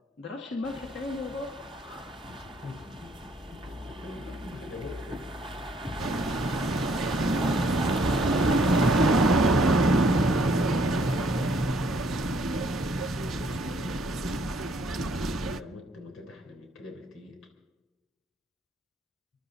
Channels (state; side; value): normal; both; correlation 0.65